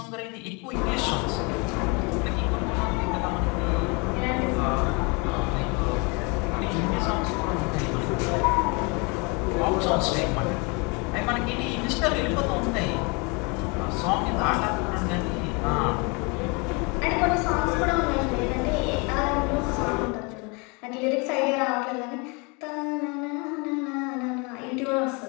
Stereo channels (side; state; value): right; quieter; 30.5 dB